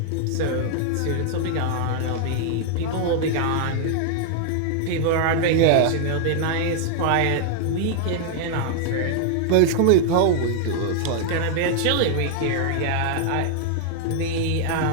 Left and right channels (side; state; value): both; different; correlation 0.00